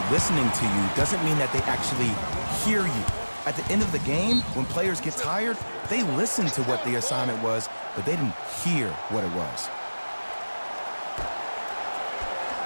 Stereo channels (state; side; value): inverted; both; correlation -1.00